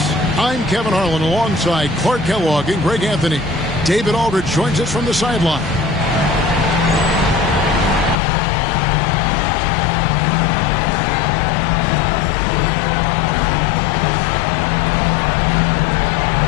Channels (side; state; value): right; drops out; at 8.2 s